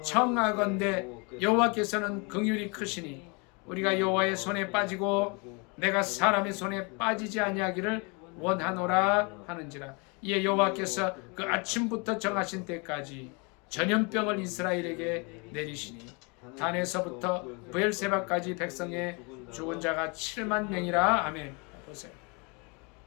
청하건대 여호와께서는 긍휼이 크시니 우리가 여호와의 손에 빠지고 내가 사람의 손에 빠지지 아니하기를 원하노라 하는지라. 이에 여호와께서 그 아침부터 정하신 때까지 전염병을 이스라엘에게 내리시니 단에서부터 브엘세바까지 백성의 죽은 자가 7만 명이라. 아멘. 보세요.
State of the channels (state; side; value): quieter; right; 31.5 dB